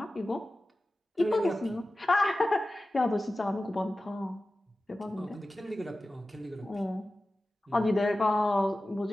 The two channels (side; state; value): both; normal; correlation 0.95